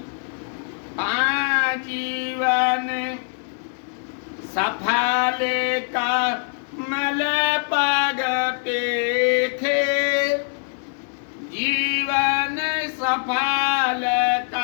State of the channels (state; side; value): silent; right; 59 dB below the other